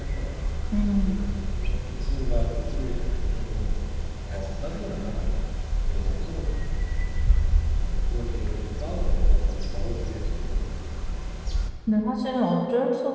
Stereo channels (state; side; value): identical; both; correlation 1.00